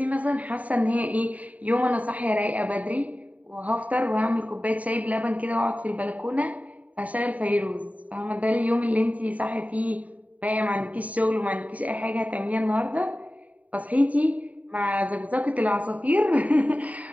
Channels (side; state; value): left; late; 0.070 ms